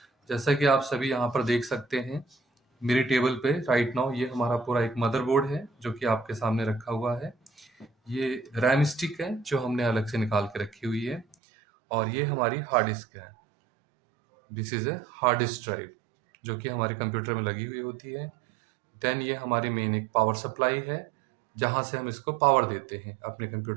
जैसा कि आप सभी यहाँ पर देख सकते हैं, मेरे टेबल पे राइट नाउ ये हमारा पूरा एक मदरबोर्ड है जो कि आपके सामने रखा हुआ है। ये रैम स्टिक है जो हमने अलग से निकाल के रखी हुई है, और ये हमारी हार्ड डिस्क है। This is a hard disk drive जो कि हमारे कंप्यूटर में लगी हुई होती है। देन ये हमारी मेन एक पावर सप्लाई है जहाँ से हम इसको पावर देते हैं अपने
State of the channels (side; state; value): left; drops out; at 11.4 s